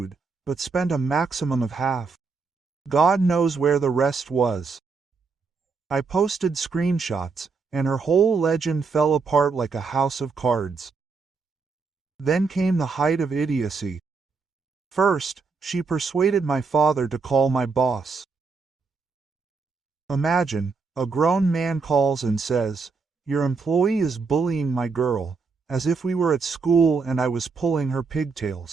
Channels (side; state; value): left; quieter; 4.7 dB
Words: but spent a maximum of half. God knows where the rest was. I posted screenshots, and her whole legend fell apart like a house of cards. Then came the height of idiocy. First, she persuaded my father to call my boss. Imagine, a grown man calls and says, "Your employee is bullying my girl," as if we were at school and I was pulling her